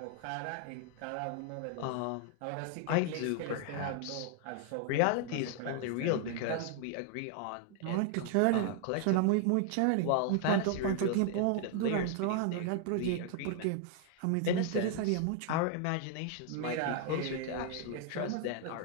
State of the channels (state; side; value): different; both; correlation 0.00